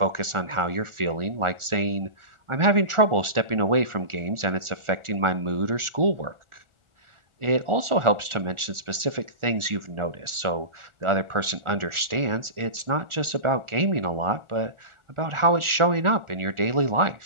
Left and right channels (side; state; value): left; late; 1.4 ms